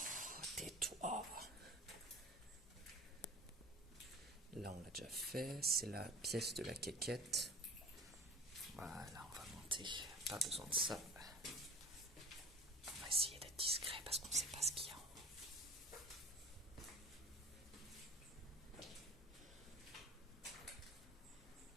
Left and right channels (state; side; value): normal; both; correlation 0.42